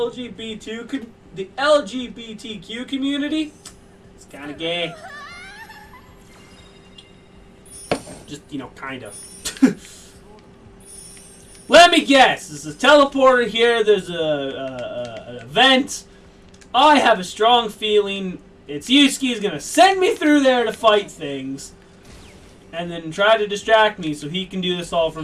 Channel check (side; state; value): both; identical; correlation 1.00